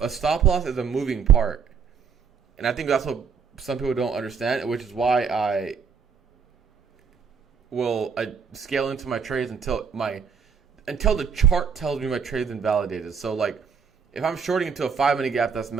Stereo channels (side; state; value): left; quieter; 6.3 dB